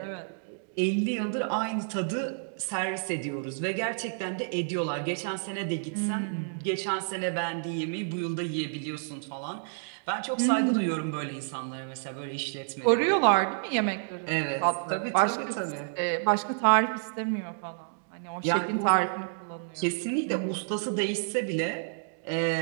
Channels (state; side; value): silent; left; digital silence